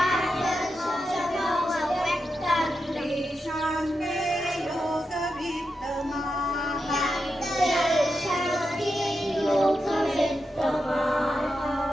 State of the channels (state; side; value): normal; both; correlation 0.88